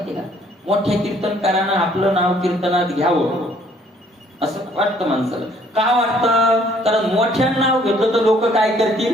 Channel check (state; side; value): normal; both; correlation 0.62